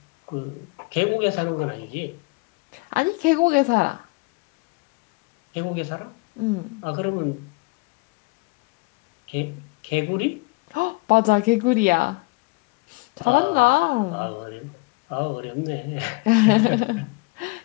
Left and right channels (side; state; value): right; quieter; 26.7 dB